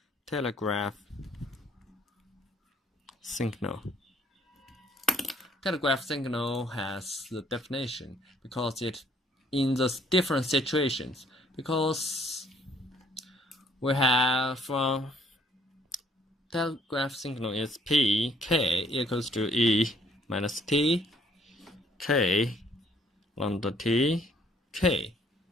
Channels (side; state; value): both; normal; correlation 0.64